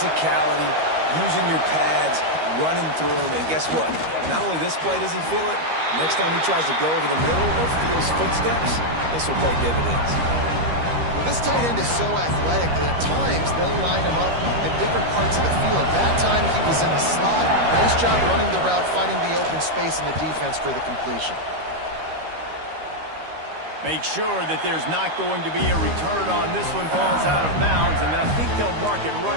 using your pads, running through them. And guess what? Not only this play does he feel it, next time he tries to go over the middle or feels footsteps, this will pay dividends. Well, this tight end is so athletic that at times they'll line him up in different parts of the field. That time he was in the slot. Nice job running the route, finding the open space in the defense for the completion. Make sure that there's not going to be a return on this one. Ball's out of bounds, and I think they'll mark it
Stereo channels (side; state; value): left; late; 13 ms